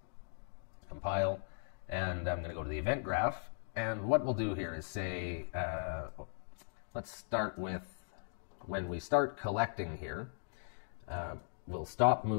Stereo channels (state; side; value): silent; right; digital silence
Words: Compile, and I'm going to go to the event graph, and what we'll do here is say, let's start with when we start collecting here, we'll stop